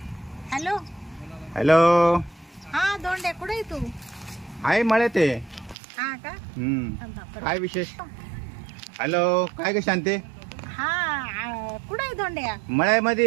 Hello hello. हा धोंड्या कुठे आहे तू? आहे मळे ते. हा का? काय विशेष? हॅलो काय ग शांते? हा कुठे आहे धोंड्या?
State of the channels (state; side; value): drops out; left; at 5.8 s